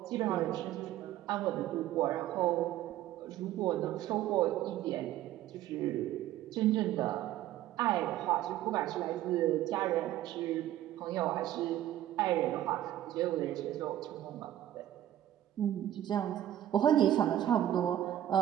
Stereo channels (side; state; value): left; quieter; 12.7 dB